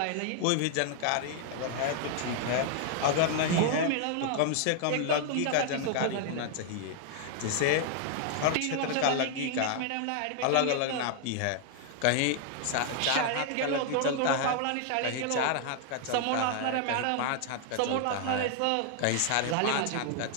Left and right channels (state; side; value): different; both; correlation 0.00